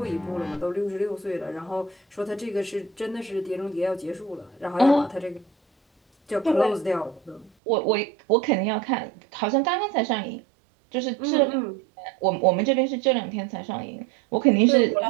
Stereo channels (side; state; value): left; drops out; at 7.5 s